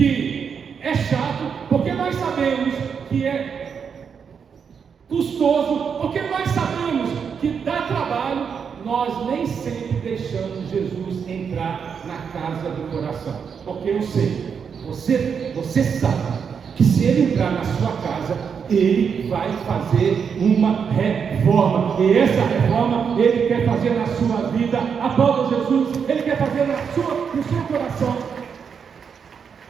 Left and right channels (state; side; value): quieter; left; 6.7 dB